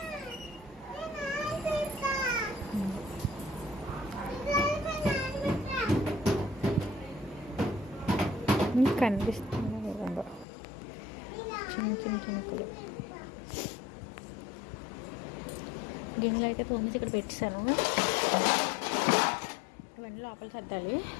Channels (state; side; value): drops out; right; at 10.5 s